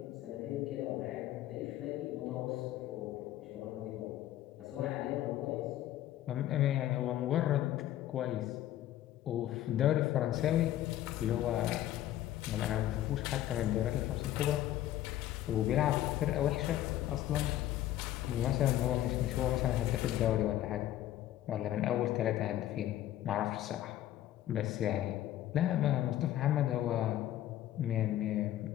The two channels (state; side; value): quieter; right; 13.1 dB